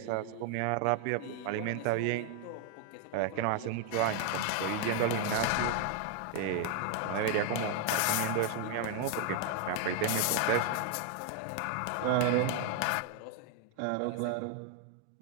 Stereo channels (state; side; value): different; both; correlation 0.00